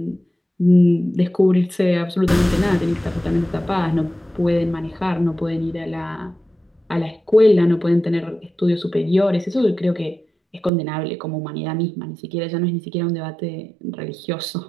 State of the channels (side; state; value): left; drops out; at 10.7 s